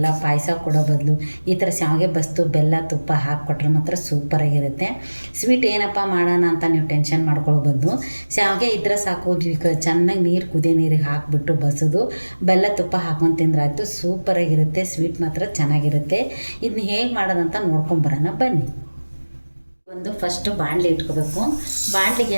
ಪಾಯಸ ಕೊಡೋ ಬದಲು ಈ ಥರ ಶಾವಿಗೆ ಬಸ್ತು ಬೆಲ್ಲ ತುಪ್ಪ ಹಾಕಿಕೊಟ್ರೆ ಮಾತ್ರ ಸೂಪರಾಗಿರುತ್ತೆ. ಸ್ವೀಟ್ ಏನಪ್ಪ ಮಾಡೋಣ ಅಂತ ನೀವು ಟೆನ್ಷನ್ ಮಾಡ್ಕೊಳ್ಬೋದು. ಶಾವಿಗೆ ಇದ್ರೆ ಸಾಕು, ಚೆನ್ನಾಗಿ ನೀರು ಕುದಿಯೋ ನೀರಿಗೆ ಹಾಕಿಬಿಟ್ಟು ಬಸೋದು ಬೆಲ್ಲ ತುಪ್ಪ ಹಾಕೊಂಡು ತಿಂದ್ರೆ ಆಯಿತು, ಸೂಪರಾಗಿರುತ್ತೆ. ಸ್ವೀಟ್ ಮಾತ್ರ ಚೆನ್ನಾಗಿರುತ್ತೆ. ಇದನ್ನ ಹೇಗೆ ಮಾಡೋದಂತ ನೋಡ್ಕೊಂಬರೋಣ ಬನ್ನಿ. ಫಸ್ಟು ಬಾಣಲೆ ಇಟ್ಕೋಬೇಕು. ಬಾಣಲೆಗೆ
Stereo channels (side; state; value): both; inverted; correlation -1.00